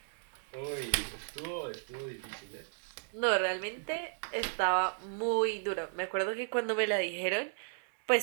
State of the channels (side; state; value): left; silent; digital silence